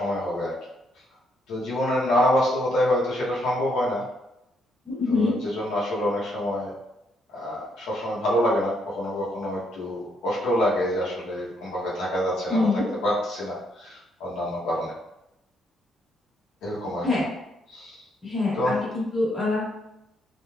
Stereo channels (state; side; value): normal; both; correlation 0.73